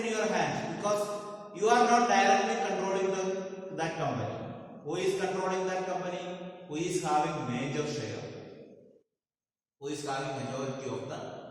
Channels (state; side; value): identical; both; correlation 1.00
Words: in your hands because you are not directly controlling that company. Who is controlling that company? Who is having major share? Who is having majority of